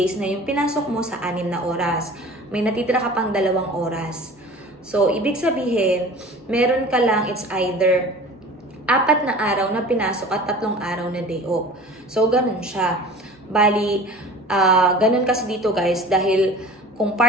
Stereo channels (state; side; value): normal; both; correlation 0.41